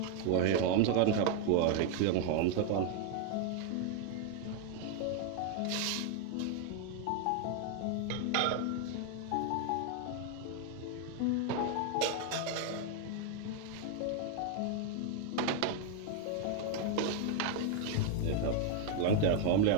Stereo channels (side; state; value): both; different; correlation 0.00